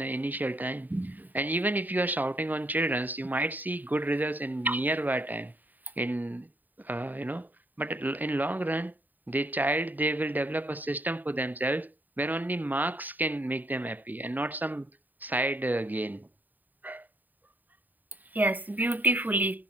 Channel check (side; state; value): left; late; 0.087 ms